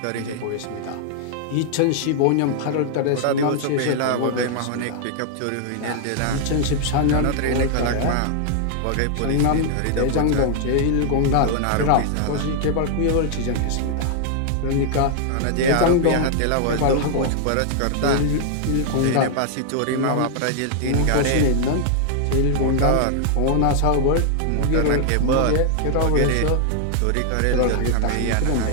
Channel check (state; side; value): different; both; correlation 0.00